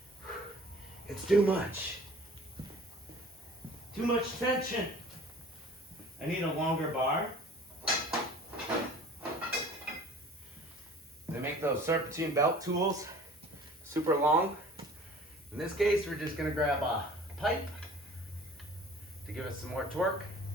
It's too much. Too much tension. I need a longer bar. They make those serpentine belt tools super long. In this case, we're just gonna grab a pipe to give us some more torque.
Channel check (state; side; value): normal; both; correlation 0.47